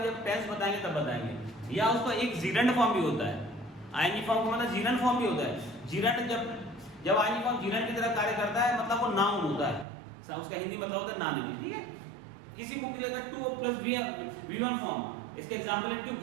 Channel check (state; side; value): drops out; left; at 9.9 s